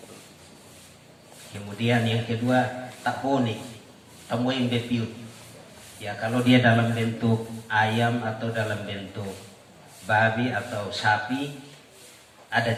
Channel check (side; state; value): both; identical; correlation 1.00